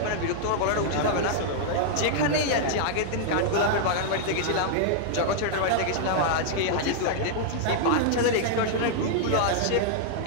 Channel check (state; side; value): different; both; correlation -0.01